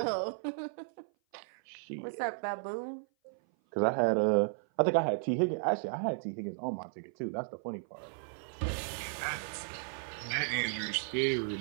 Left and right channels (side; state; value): left; silent; 55 dB below the other